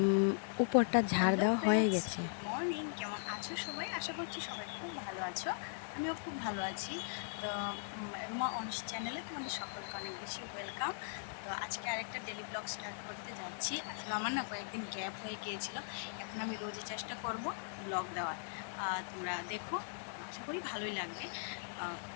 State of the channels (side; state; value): right; silent; digital silence